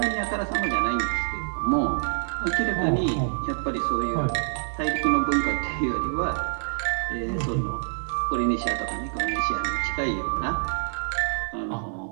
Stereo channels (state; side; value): silent; left; 61 dB below the other